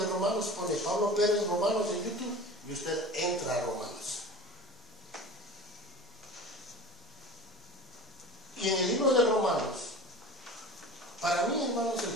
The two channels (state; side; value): normal; both; correlation 0.37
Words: Romanos, pone Pablo Pérez Romanos en YouTube y usted entra a Romanos. Y en el libro de Romanos, para mí, hermanos,